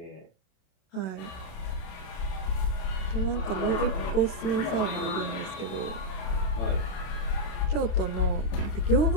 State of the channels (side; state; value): right; late; 27 ms